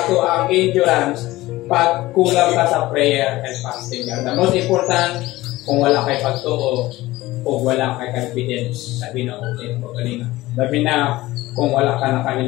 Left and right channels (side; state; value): right; quieter; 18.0 dB